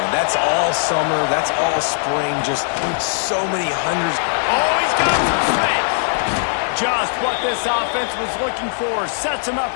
That's all summer. That's all spring. Just so many hundreds. Oh, he's got some space. Just what this offense was looking for. Sets him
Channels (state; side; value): silent; right; digital silence